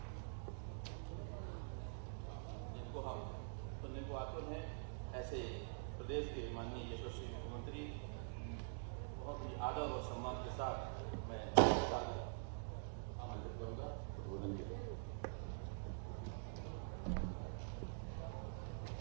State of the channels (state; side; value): silent; left; digital silence